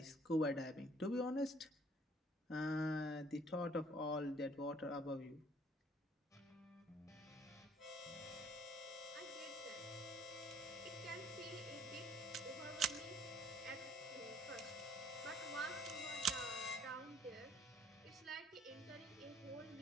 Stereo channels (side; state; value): both; normal; correlation 0.59